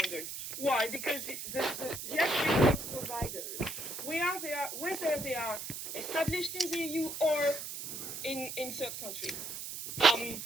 Why? Because the actual providers, whether they are established in the EU or in third countries.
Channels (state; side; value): noise; right; hiss, 7 dB below the sound